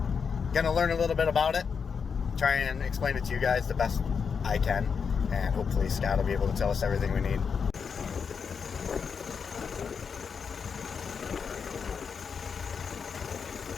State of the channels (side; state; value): right; quieter; 6.1 dB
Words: going to learn a little bit about it. Try and explain it to you guys the best I can, and hopefully Scott will be able to tell us everything we need.